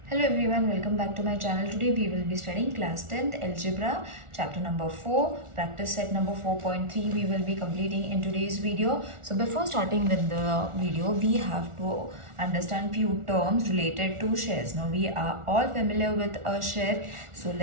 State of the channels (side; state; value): left; late; 1.4 ms